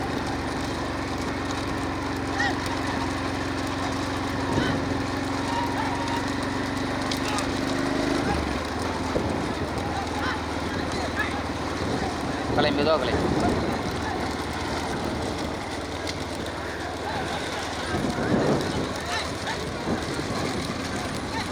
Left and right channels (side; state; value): both; identical; correlation 1.00